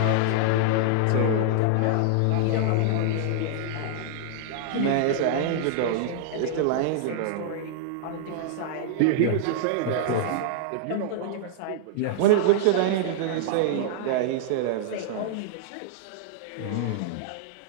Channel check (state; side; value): different; both; correlation -0.01